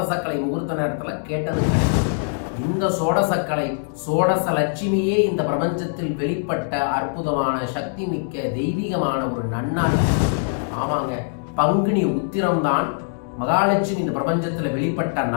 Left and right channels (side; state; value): right; silent; digital silence